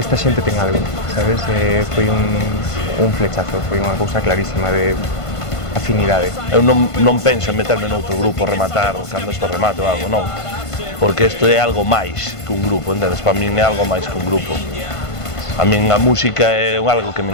xente ten algo, sabes? Foi un flechazo, foi unha cousa clarísima de afinidade. Eu non penso en meterme noutro grupo, rematar cando isto remate ou algo, non. Porque isto é algo máis que un grupo, entendes? Para min é algo máis que un grupo. A min a música é algo que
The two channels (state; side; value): late; right; 1.5 ms